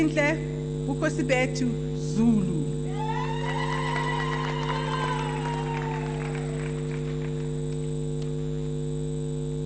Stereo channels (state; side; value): identical; both; correlation 1.00